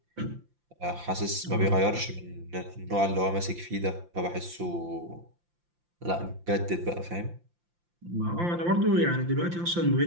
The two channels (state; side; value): late; left; 5.8 ms